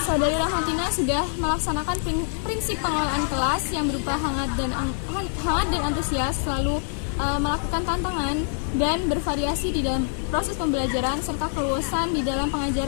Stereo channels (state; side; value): silent; right; digital silence